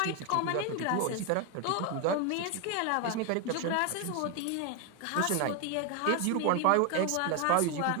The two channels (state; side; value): different; both; correlation 0.01